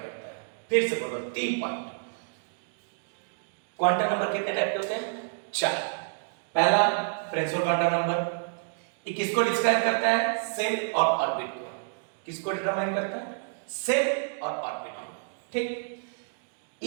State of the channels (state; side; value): silent; left; digital silence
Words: करता है। फिर से बोलो, 3 पॉइंट। क्वांटम नंबर कितने टाइप के होते हैं, 4। पहला प्रिंसिपल क्वांटम नंबर, ये किसको डिस्क्राइब करता है, सेल और ऑर्बिट को। किसको डिटरमाइन करता है, सेल और ऑर्बिट को, ठीक।